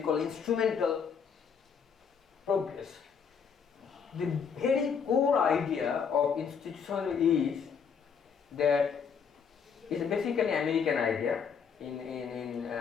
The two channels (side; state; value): right; quieter; 6.5 dB